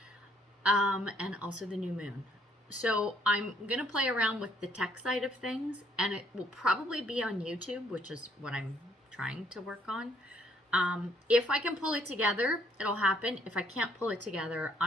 And also the new moon. So I'm going to play around with the tech side of things, and it will probably be on YouTube, which is what I'm trying to work on. If I can pull it together, it'll happen. If I can't pull it together,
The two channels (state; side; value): normal; both; correlation 0.67